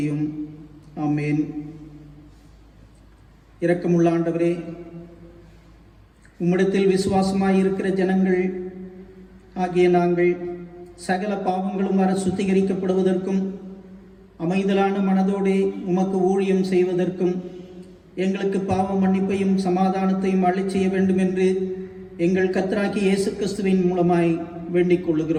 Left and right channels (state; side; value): identical; both; correlation 1.00